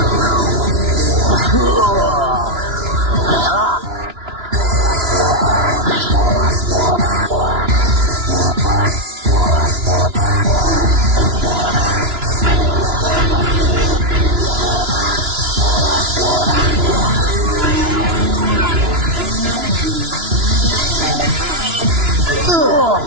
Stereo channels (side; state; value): left; late; 2.9 ms